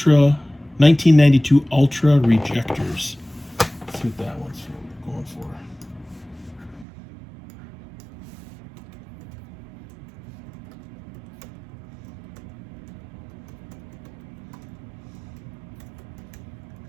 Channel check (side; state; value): left; drops out; at 6.9 s